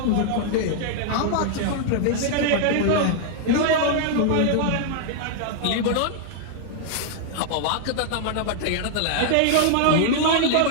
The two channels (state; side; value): different; both; correlation 0.00